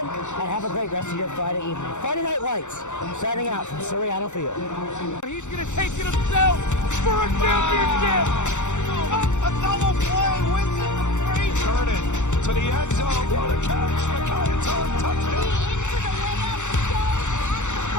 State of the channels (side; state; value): right; late; 0.84 ms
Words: and have a great rest of your Friday evening. Friday Night Lights, signing out from Soriano Field. He's going to take it himself for a championship. A double play wins it for Frazier. Turn it to the end zone. What a catch. McKay